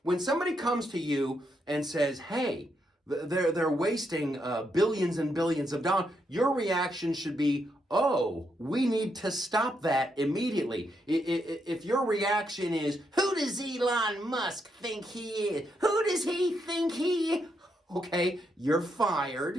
When somebody comes to you and says, hey, they're wasting billions and billions of dollars, your reaction should be, oh, we need to stop that immediately. If your reaction is, who does Elon Musk think he is? Who does he think he is? Okay, you're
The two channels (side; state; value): both; normal; correlation 0.80